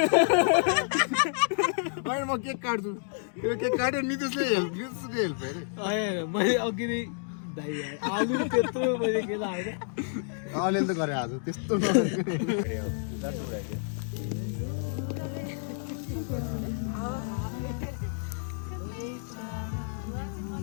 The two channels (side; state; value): right; silent; digital silence